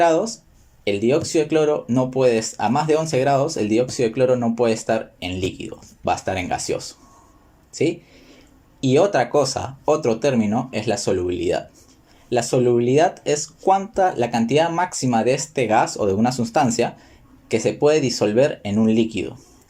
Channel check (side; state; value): both; identical; correlation 1.00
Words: el dióxido de cloro no puede, a más de 11 grados, el dióxido de cloro no puede estar en líquido, va a estar en gaseoso, ¿sí? Y otra cosa, otro término, es la solubilidad. La solubilidad es la cantidad máxima de este gas o de una sustancia que se puede disolver en un líquido